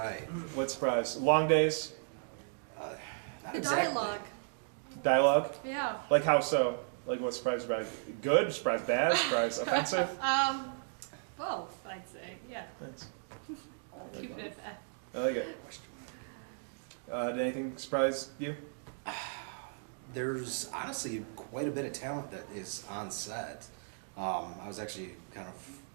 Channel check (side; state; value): left; silent; digital silence